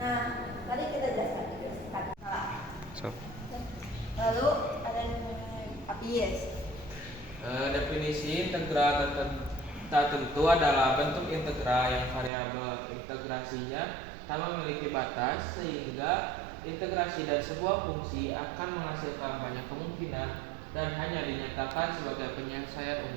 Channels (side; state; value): left; drops out; at 12.3 s